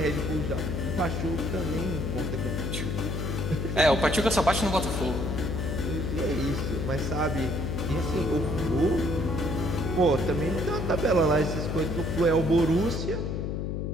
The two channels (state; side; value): noise; left; hum, 2 dB below the sound